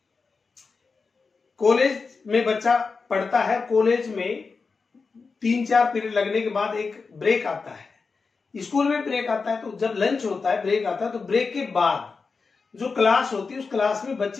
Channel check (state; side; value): quieter; right; 4.6 dB